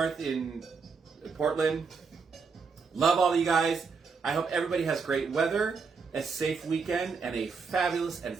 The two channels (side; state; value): left; quieter; 5.1 dB